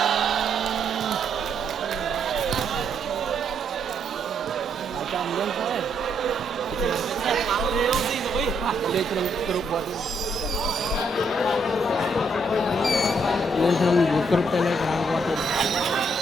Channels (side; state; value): both; normal; correlation 0.73